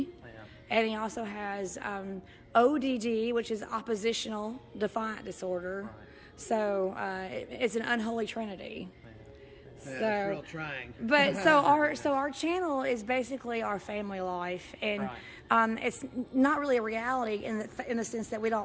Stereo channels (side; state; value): both; identical; correlation 1.00